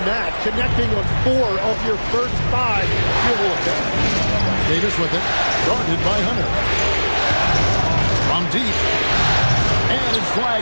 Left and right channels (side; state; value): both; inverted; correlation -1.00